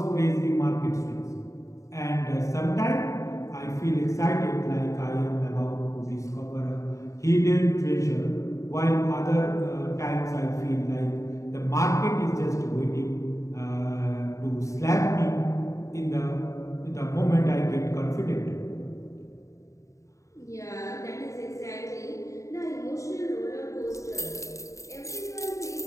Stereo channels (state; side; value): late; right; 0.15 ms